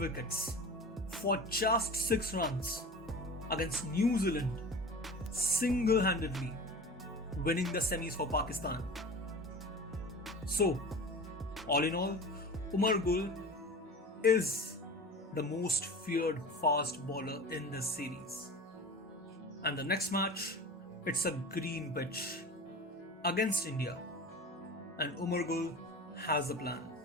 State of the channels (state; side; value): normal; both; correlation 0.34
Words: for just 6 runs against New Zealand, single-handedly winning the semis for Pakistan. So, all in all, Umar is the most feared fast bowler in this series. And the next match, it's a green pitch against India. And Umar has a plan.